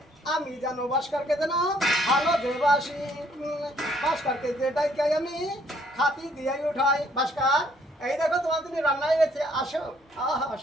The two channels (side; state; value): both; normal; correlation 0.65